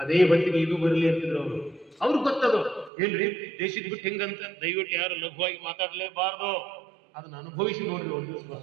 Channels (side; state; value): left; drops out; at 2.9 s